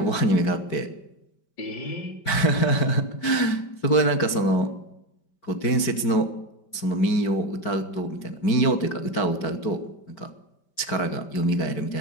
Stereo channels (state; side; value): late; right; 5.1 ms